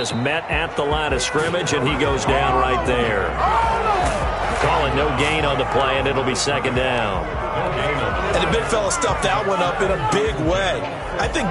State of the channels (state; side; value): identical; both; correlation 1.00